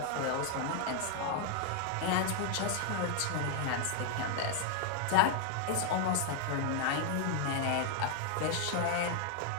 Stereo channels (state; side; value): different; both; correlation 0.00